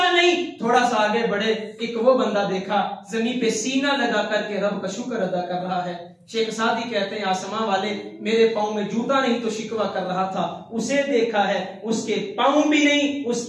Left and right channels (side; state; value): both; identical; correlation 1.00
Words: नहीं। थोड़ा सा आगे बढ़े, एक वो बंदा देखा जमीन पे सीना लगा करके रब का शुक्र अदा कर रहा है। शेख सादी कहते हैं आसमां वाले मेरे पांव में जूता नहीं तो शिकवा कर रहा था, उसे देखा है उसके पांव भी नहीं,